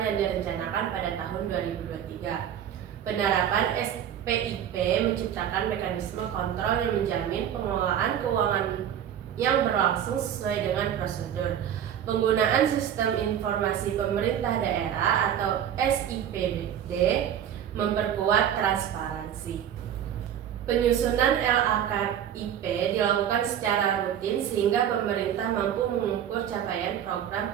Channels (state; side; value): quieter; left; 9.8 dB